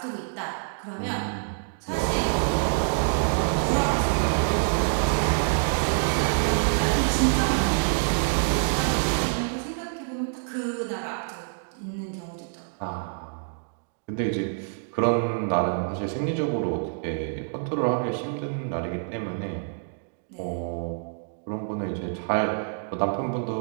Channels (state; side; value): silent; left; digital silence